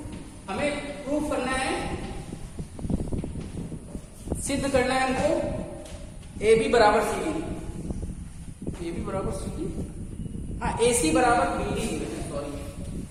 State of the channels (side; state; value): both; identical; correlation 1.00